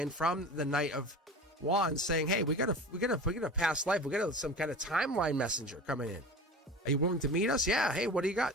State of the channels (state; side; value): normal; both; correlation 0.35